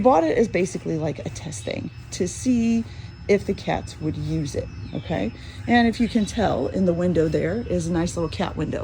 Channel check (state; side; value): identical; both; correlation 1.00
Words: it as basically like a test thing to see if the cats would use it, okay? And if you can tell, in the window there is a nice little cat